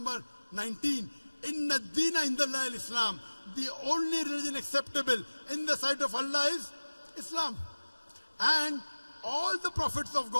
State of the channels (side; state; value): both; inverted; correlation -1.00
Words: 19, Inna Deena Indallahi Islam. The only religion acceptable in the sight of Allah is Islam. And all the prophets of